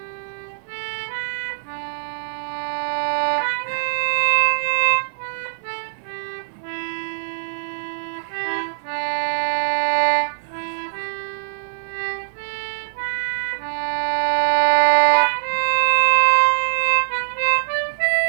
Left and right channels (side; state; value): left; silent; 62 dB below the other